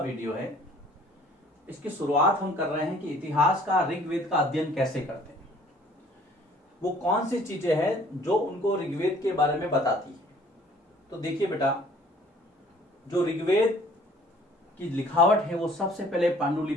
है। इसकी शुरुआत हम कर रहे हैं कि इतिहास का ऋग्वेद का अध्ययन कैसे करते हैं, वो कौन सी चीजें हैं जो उनको ऋग्वेद के बारे में बताती है। तो देखिए बेटा, जो ऋग्वेद की लिखावट है वो सबसे पहले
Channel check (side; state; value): both; normal; correlation 0.55